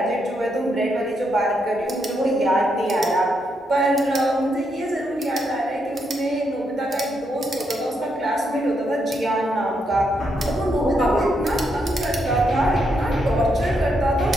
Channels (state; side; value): normal; both; correlation 0.79